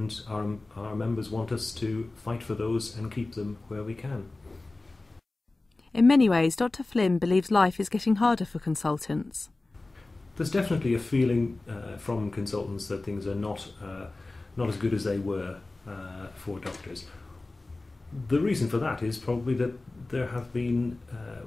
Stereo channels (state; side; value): quieter; right; 3.1 dB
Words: our members want us to fight for those and keep them where we can. In many ways, Dr. Flynn believes life is getting harder for consultants. There's definitely a feeling from consultants that things are not as good as they were for doctors. The reason for that is probably that there have been,